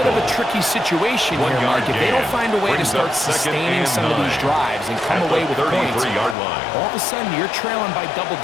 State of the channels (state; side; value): drops out; right; at 6.4 s